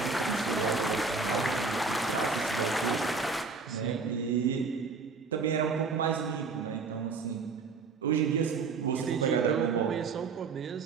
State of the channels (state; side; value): quieter; left; 4.7 dB